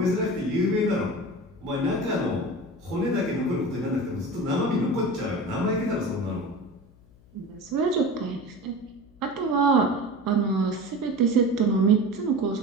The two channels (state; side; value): noise; left; hum, 27 dB below the sound